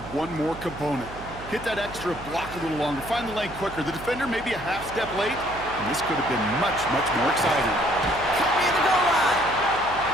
one more component. Hit that extra block a little longer, find the lane quicker. The defender may be a half step late, and this could have been much, much more exciting. Cut me at the goal line.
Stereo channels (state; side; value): noise; right; hum, 15 dB below the sound